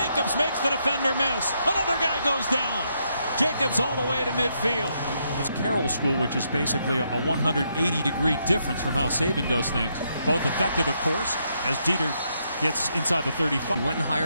makes the defender miss. Another guy goes down. Jacobs all the way to midfield. It's Carroll School, which is basically a 180-degree difference from how Saban does things. Both effective, of course, as Dieter gets inside the 35. He went and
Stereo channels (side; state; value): both; inverted; correlation -0.77